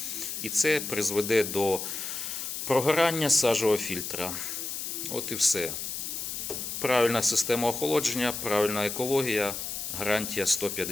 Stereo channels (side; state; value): left; noise; hiss, 5 dB below the sound